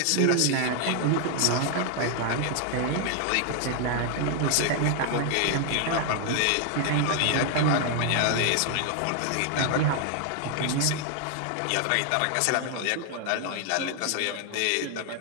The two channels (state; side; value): different; both; correlation 0.00